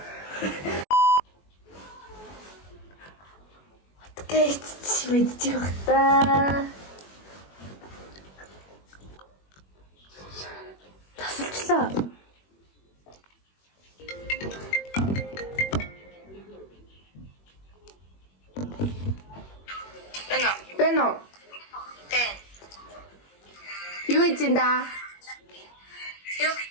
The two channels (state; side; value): late; right; 21 ms